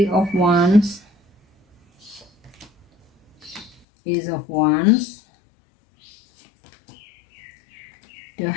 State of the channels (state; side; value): drops out; right; at 3.8 s